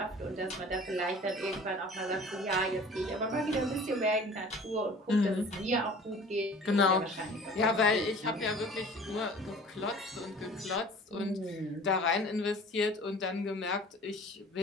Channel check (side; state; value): both; normal; correlation 0.45